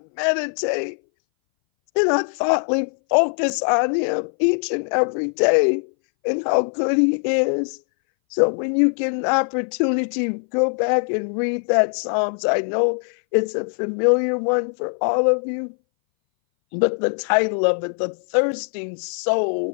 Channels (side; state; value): right; silent; 61 dB below the other